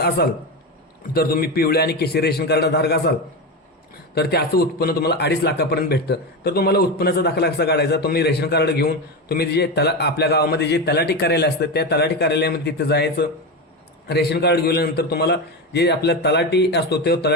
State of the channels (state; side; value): normal; both; correlation 0.17